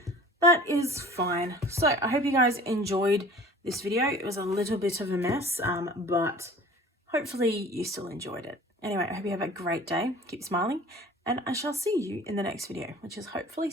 that is fine. So I hope you guys enjoyed this video. It was a little bit of a mess, but hopefully you still enjoyed it. Anyway, I hope you have a great day. Keep smiling, and I shall see you in the next video, which is hopefully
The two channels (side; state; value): both; normal; correlation 0.45